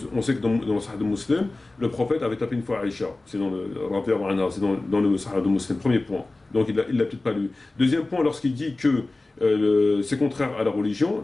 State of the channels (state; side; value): quieter; right; 3.0 dB